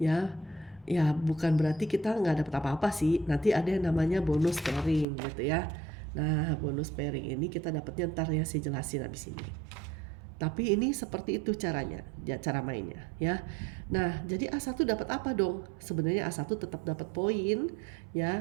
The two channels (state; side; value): drops out; left; at 5.1 s